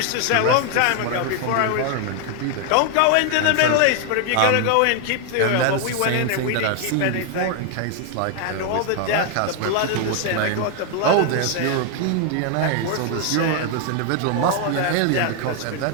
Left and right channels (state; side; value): different; both; correlation 0.00